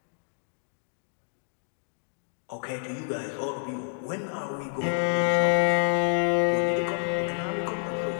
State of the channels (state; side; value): silent; right; digital silence